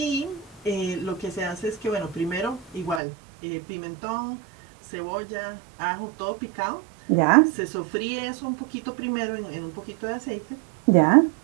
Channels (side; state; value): left; drops out; at 3.0 s